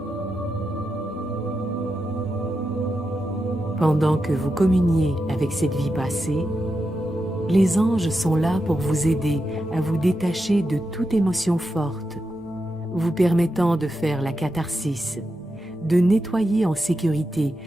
Pendant que vous communiez avec cette vie passée, les anges sont là pour vous aider à vous détacher de toute émotion forte, vous permettant de faire la catharsis, de nettoyer en sécurité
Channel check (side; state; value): both; normal; correlation 0.87